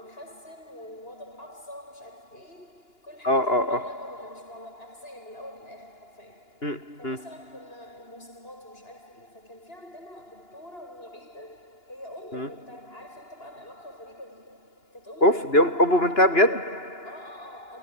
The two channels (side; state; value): right; late; 2.9 ms